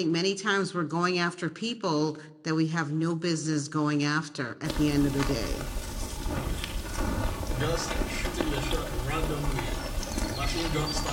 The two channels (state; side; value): identical; both; correlation 1.00